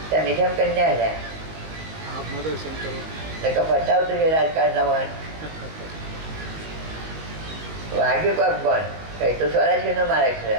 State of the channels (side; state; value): left; late; 19 ms